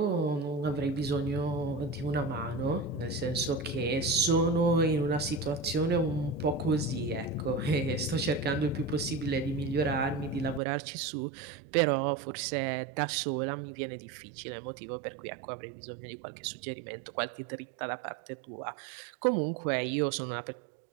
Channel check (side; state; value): left; drops out; at 10.6 s